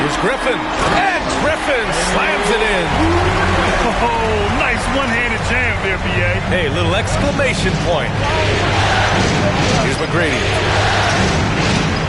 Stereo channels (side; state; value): both; identical; correlation 1.00